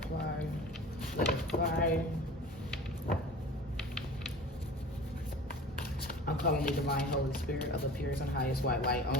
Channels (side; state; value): both; normal; correlation 0.39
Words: let it fly. I'm calling the divine Holy Spirit of the purest and highest white light